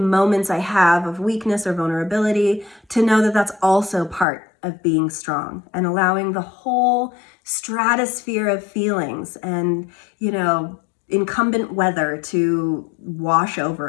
I have of weakness or vulnerability, to know that that's also part of being strong and allowing the whole stratosphere of feelings and, you know, incumbent weather to wash over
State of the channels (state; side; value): drops out; right; at 4.2 s